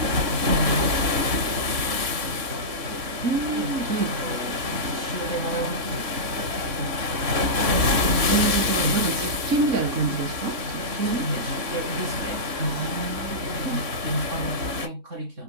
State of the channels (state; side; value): late; left; 3.6 ms